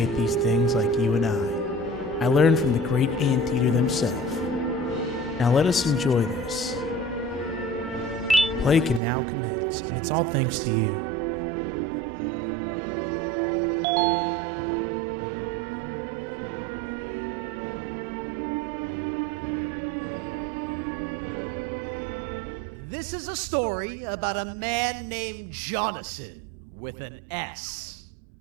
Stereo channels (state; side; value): drops out; left; at 9.0 s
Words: these things like you and I. I learned from the great anteater themselves. Now let us enjoy this. Play can now commence, and it's all thanks to you. This is a story about a man named Jonathan with an S.